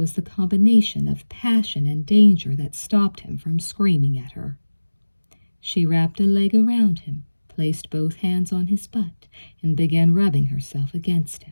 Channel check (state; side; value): inverted; both; correlation -1.00